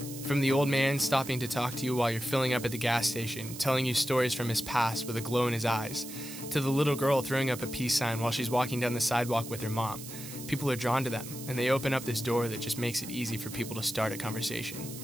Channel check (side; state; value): right; noise; hiss, 12 dB below the sound